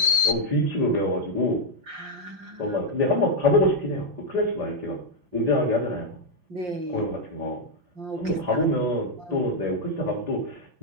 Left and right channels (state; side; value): late; left; 5.6 ms